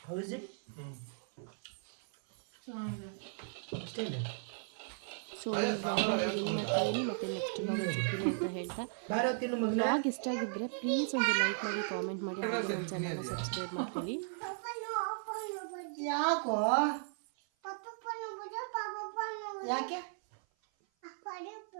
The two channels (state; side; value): silent; left; 53 dB below the other